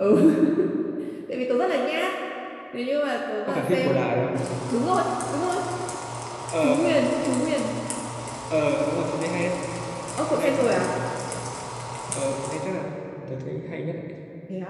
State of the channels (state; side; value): identical; both; correlation 1.00